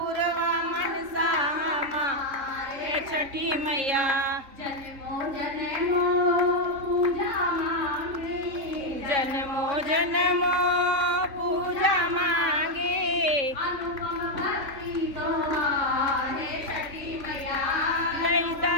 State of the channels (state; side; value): late; left; 3.6 ms